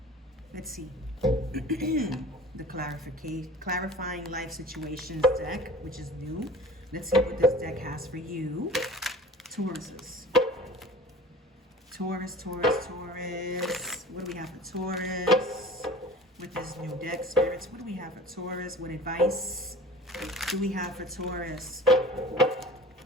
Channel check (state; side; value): normal; both; correlation 0.42